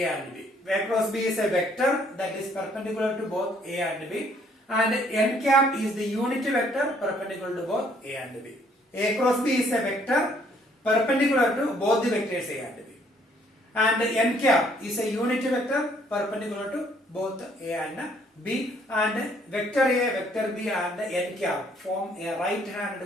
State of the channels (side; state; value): both; normal; correlation 0.64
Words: and B. A cross B is a vector that is perpendicular to both A and B. And n cap is the unit vector perpendicular to both A and B. A cross B is a vector perpendicular to both the vectors A and B. And n cap is a unit vector perpendicular to both A and B. And vector A, vector B and n cap form a